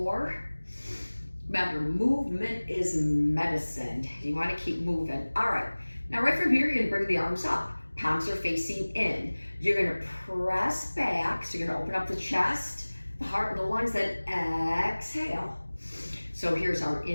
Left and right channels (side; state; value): both; inverted; correlation -1.00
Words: Remember, movement is medicine. You want to keep moving. All right. Now right from here, you're going to bring the arms up. Palms are facing in. You're going to press back. So you're going to open up the chest, the heart, and the lungs, then exhale. So here's our